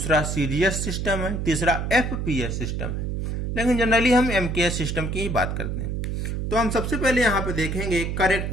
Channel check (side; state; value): right; noise; hum, 2 dB below the sound